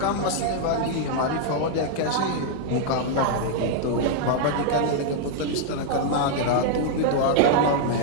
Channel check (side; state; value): both; different; correlation -0.01